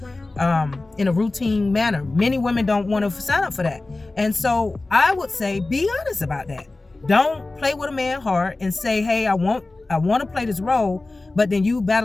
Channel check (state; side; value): quieter; right; 3.1 dB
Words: in a routine manner. Many women don't want to sign up for that. And so I would say, be honest about that. Don't play with a man hard and say, hey, I want to play this role, but then you